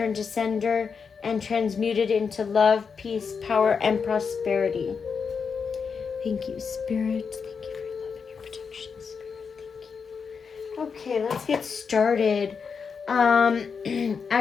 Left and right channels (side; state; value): right; quieter; 5.8 dB